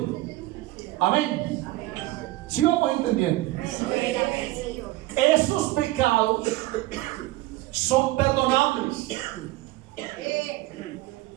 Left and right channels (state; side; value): quieter; left; 18.4 dB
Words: Amén. ¿Sí vamos entendiendo? Esos pecados son perdonables.